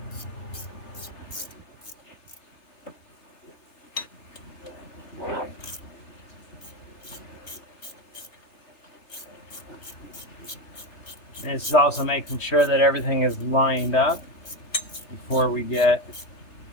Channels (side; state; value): right; late; 3.3 ms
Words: And this is also making sure that everything is lined up before we get